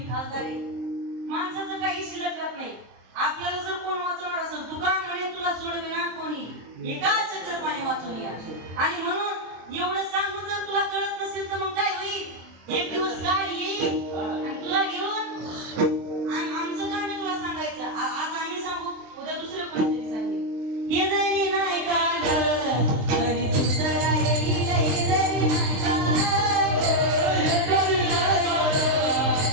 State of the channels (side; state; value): left; late; 23 ms